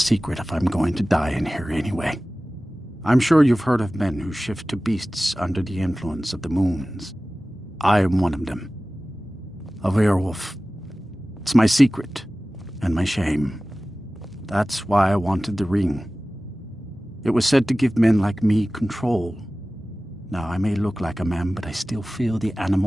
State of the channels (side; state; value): both; normal; correlation 0.97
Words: if I'm going to die in here anyway. I'm sure you've heard of men who shift to beasts under the influence of the moons. I am one of them. A werewolf. It's my secret, and my shame. That's why I wanted the ring. It was said to give men like me control. Now, I may look like a man, but I still feel the